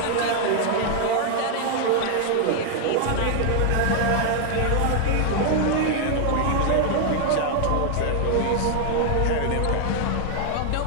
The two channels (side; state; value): both; different; correlation 0.00